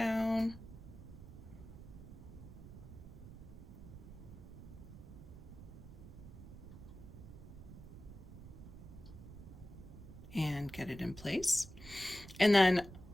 And get it in place. And then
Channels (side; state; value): right; noise; rumble, 14 dB below the sound